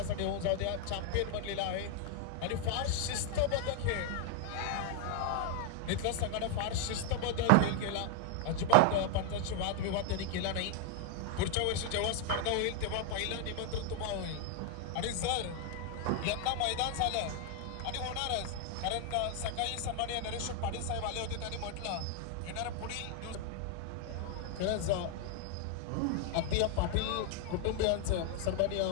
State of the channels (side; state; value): both; different; correlation 0.00